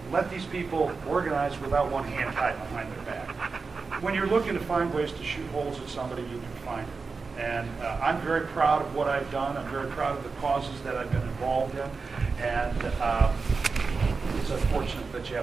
let these people organize without one hand tied behind their back. When you're looking to find ways to shoot holes at somebody, you can find it. And I'm very proud of what I've done. I'm very proud of the causes that I've been involved in. And it's unfortunate that you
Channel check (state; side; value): quieter; left; 4.6 dB